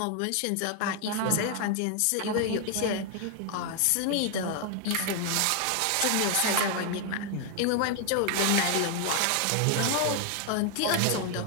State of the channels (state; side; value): different; both; correlation 0.00